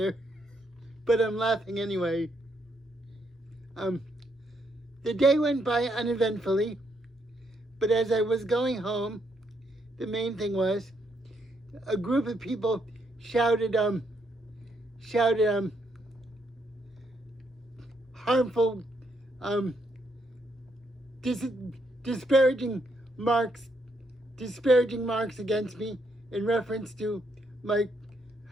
but I'm laughing anyway. The day went by uneventfully, but as I was going home, the main thing was a group of people shouted harmful, disparaging marks against me in reference to my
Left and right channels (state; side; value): normal; both; correlation 0.75